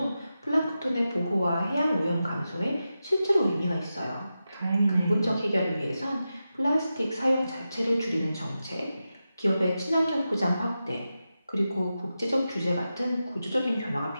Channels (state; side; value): inverted; both; correlation -0.91